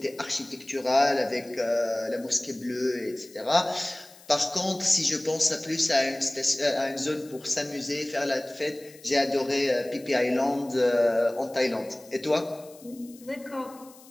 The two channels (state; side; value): noise; left; hiss, 23 dB below the sound